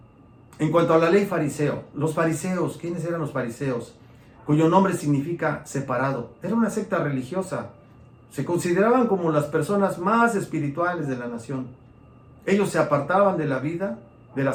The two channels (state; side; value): identical; both; correlation 1.00